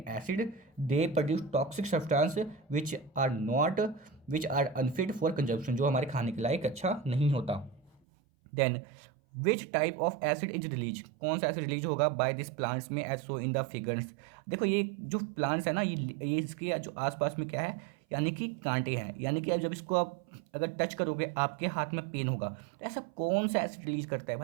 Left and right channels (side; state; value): left; drops out; at 8.0 s